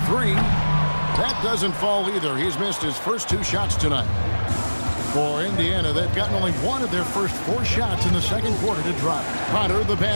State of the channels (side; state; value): both; inverted; correlation -1.00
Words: 3. That doesn't fall either. He's missed his first 2 shots tonight. For Indiana, they've gotten only 1 of their first 4 shots in the second quarter to drop. Potter, the